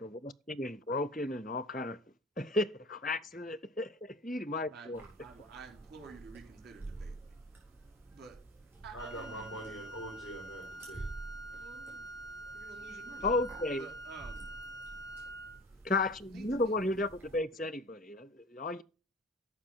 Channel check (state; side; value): normal; both; correlation 0.40